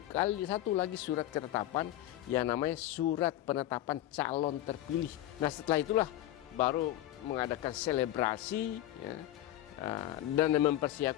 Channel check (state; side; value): quieter; right; 13.9 dB